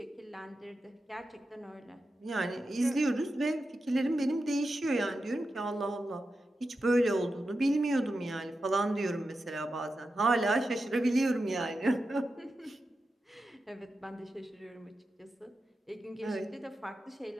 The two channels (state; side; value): normal; both; correlation 0.90